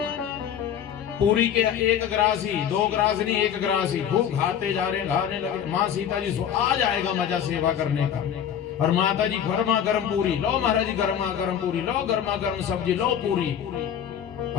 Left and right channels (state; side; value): quieter; right; 9.1 dB